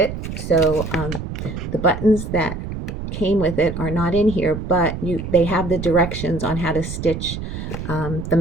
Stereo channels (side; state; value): right; noise; rumble, 7 dB below the sound